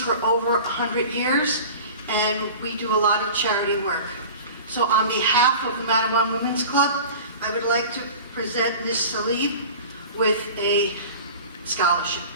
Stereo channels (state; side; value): inverted; both; correlation -0.38